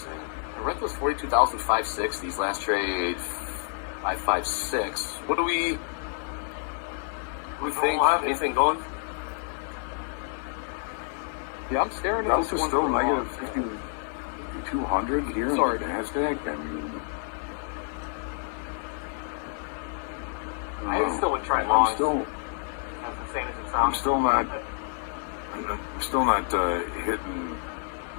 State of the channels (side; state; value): right; silent; 59 dB below the other